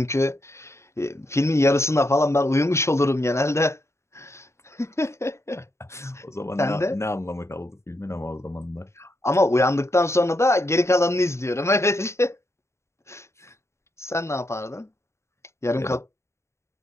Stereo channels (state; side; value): late; right; 0.13 ms